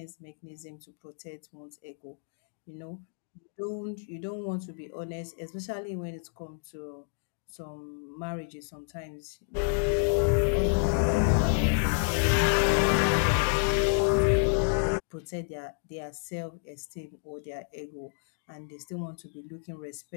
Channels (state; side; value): silent; right; digital silence